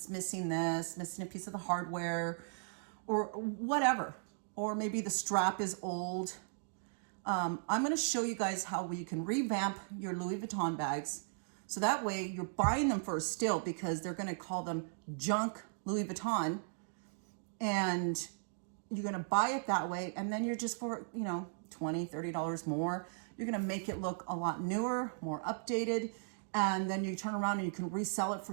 missing this, missing a piece of the hardware or whatever. Or maybe the strap is old. I'm going to show you guys how you can revamp your Louis Vuitton bags. So that way you're buying them for a steal, because they're going to call them junk Louis Vuitton. And you're going to buy it that way. And then you're just for, you know, $20, $30 more. You're going to make it look a lot newer, more updated. And then you turn around and you can resell it for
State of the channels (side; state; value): left; silent; digital silence